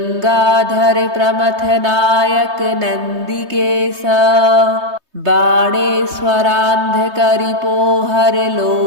प्रमथ नायक नंदिकेश बाणेश्वरांध करिपोहर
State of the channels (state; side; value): late; left; 3.2 ms